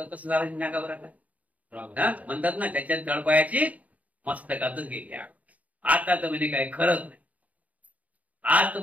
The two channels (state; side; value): late; left; 0.071 ms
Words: कसं झालं नाका बरं म्हणतात ना, त्याच्यात तळपायाची मस्तकातच गेली. आता तर म्हणे काही खरंच नाही, आज तर